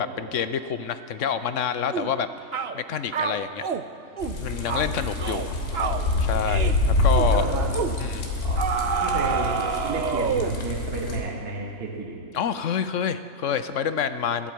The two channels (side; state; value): right; late; 3.6 ms